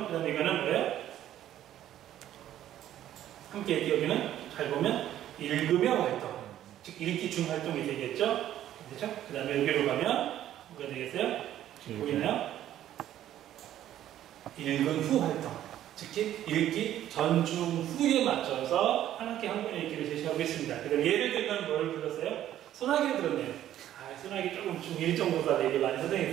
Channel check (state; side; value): quieter; left; 12.1 dB